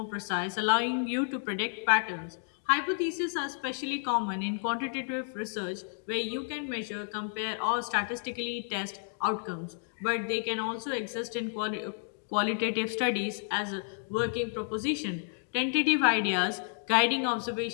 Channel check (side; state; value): right; silent; 57 dB below the other